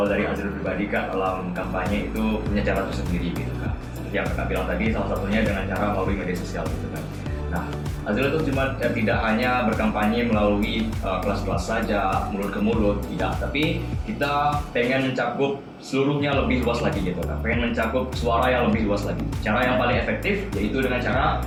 dari Azril pribadi Kak, dalam kampanye itu punya cara tersendiri gitu Kak. Seperti yang Kakak bilang tadi, salah satunya dengan cara melalui media sosial gitu kan. Nah, Azril itu cuma tidak hanya berkampanye melalui kelas-kelas saja, mulut ke mulut, tidak. Tapi kita pengen mencakup seluruhnya lebih luas lagi gitu kan. Pengen mencakup suara yang lebih luas lagi. Cara yang paling efektif yaitu dengan cara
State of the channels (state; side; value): identical; both; correlation 1.00